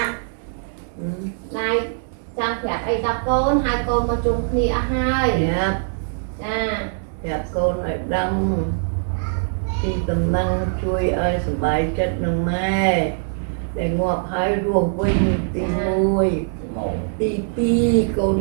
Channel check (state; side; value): silent; left; digital silence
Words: này trang phép ấy đọc con hai con mà chung khi hai Dạ con lại đâm thì tầm năng chui ơi sửa bài chất nâng mê để ngọt hai ruộng vinh tì mùi tì pi